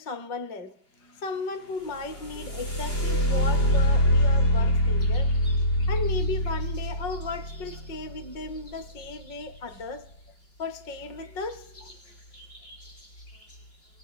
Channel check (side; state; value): right; late; 4.9 ms